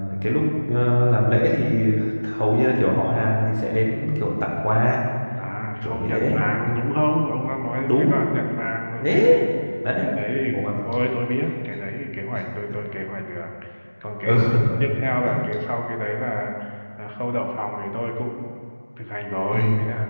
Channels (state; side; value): inverted; both; correlation -1.00